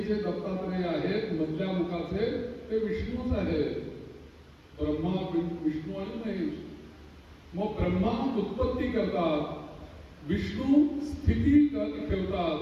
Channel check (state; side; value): identical; both; correlation 1.00